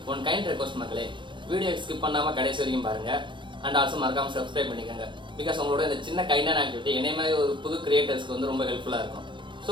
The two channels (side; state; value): left; late; 0.23 ms